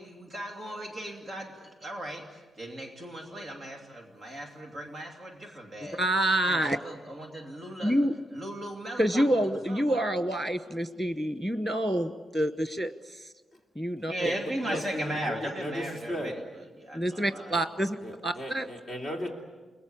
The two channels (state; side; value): normal; both; correlation 0.83